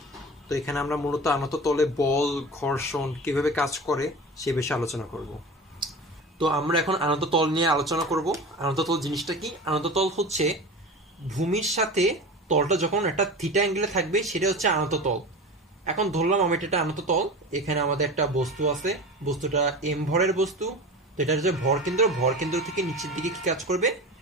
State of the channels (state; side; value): normal; both; correlation 0.31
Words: তো এখানে আমরা মূলত আনত তলে বল, ঘর্ষণ কিভাবে কাজ করে সে বিষয়ে আলোচনা করব। তো আমরা এখন আনত তল নিয়ে আলোচনা করব। আনত তল জিনিসটা কি? আনত তল হচ্ছে ভূমির সাথে তলটা যখন একটা থিটা অ্যাঙ্গেলে থাকবে সেটা হচ্ছে আনত তল। এখন ধরলাম আমি এটা আনত তল, এখানে আমাদের একটা বস্তু আছে, বস্তুটা এম ভরের বস্তু। তো এটা হচ্ছে ভর কেন্দ্র থেকে নিচের দিকে কি কাজ করবে?